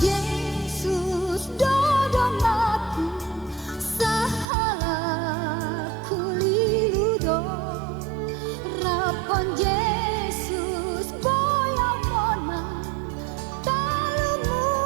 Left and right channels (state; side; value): drops out; left; at 4.5 s